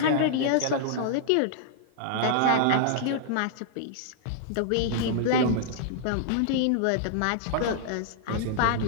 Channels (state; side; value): different; both; correlation -0.01